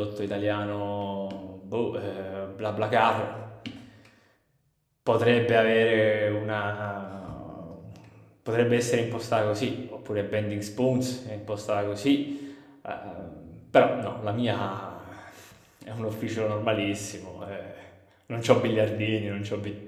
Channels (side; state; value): both; identical; correlation 1.00